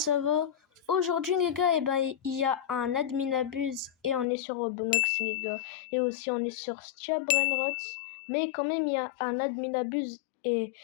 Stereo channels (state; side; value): drops out; right; at 4.2 s